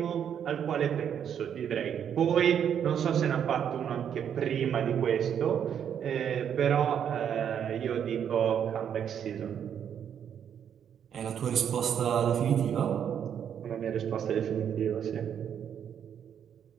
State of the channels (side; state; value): left; quieter; 8.7 dB